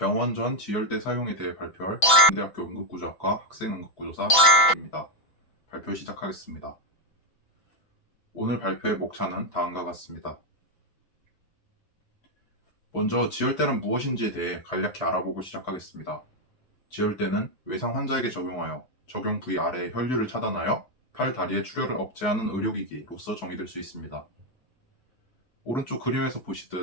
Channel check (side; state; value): right; late; 6.1 ms